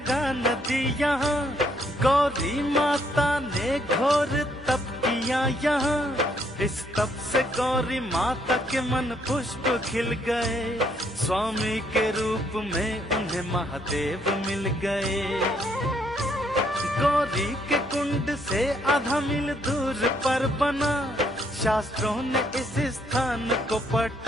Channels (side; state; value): both; normal; correlation 0.70